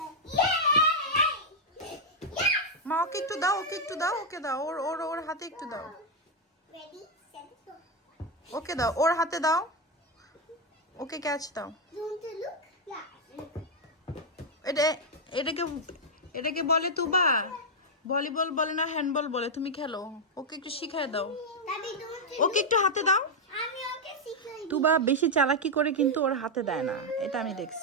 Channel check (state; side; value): normal; both; correlation 0.01